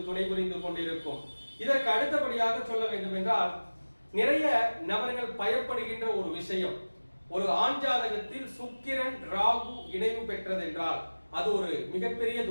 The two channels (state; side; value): inverted; both; correlation -1.00